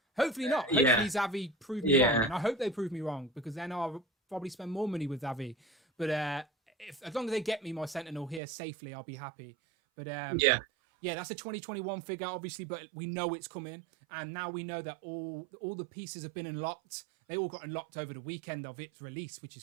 Hopefully not. Hopefully Xavi prove me wrong. And I hope they prove me wrong because then I'll probably spend more money with Xavi. But as long as they get me my Sentinel here safely, I'll be happy. But that's a 2021 figure, obviously, but we know it's coming. And now we know that all the pieces have been unlocked. They all got unlocked over the weekend of its release, which is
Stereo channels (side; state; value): left; drops out; at 8.4 s